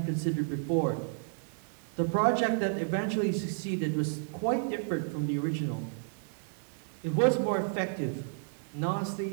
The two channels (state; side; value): silent; left; digital silence